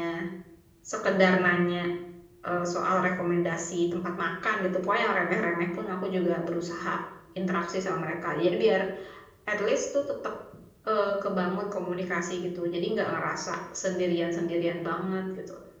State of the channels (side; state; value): both; identical; correlation 1.00